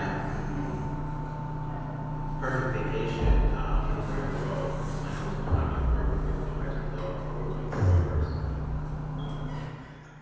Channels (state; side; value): identical; both; correlation 1.00